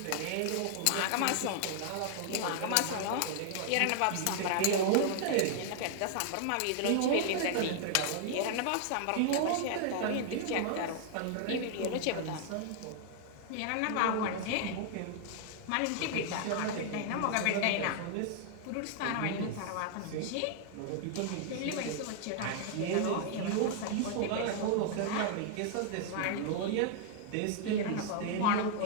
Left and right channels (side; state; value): both; different; correlation 0.00